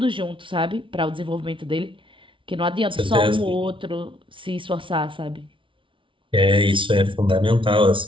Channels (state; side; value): late; left; 0.25 ms